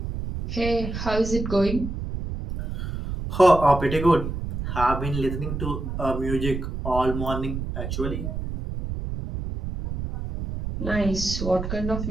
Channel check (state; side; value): noise; right; rumble, 5 dB below the sound